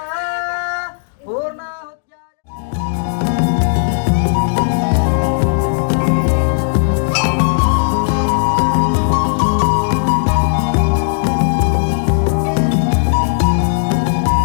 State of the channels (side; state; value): right; silent; digital silence